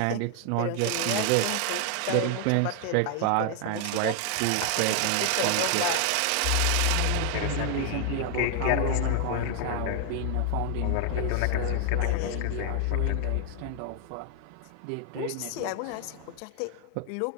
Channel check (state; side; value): different; both; correlation 0.00